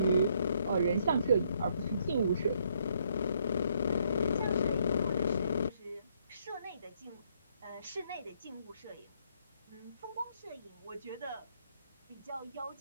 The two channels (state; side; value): inverted; both; correlation -0.70